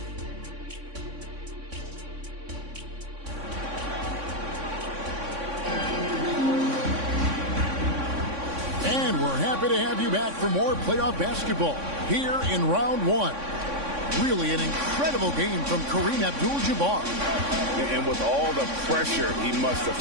And we're happy to have you back for more playoff basketball here in round 1. Really an incredible game from Kareem Abdul-Jabbar. And with all the pressure he must have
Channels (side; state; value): left; late; 3.6 ms